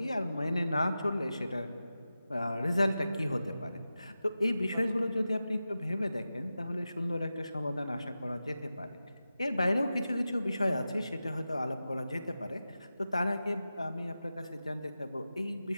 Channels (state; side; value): inverted; both; correlation -0.93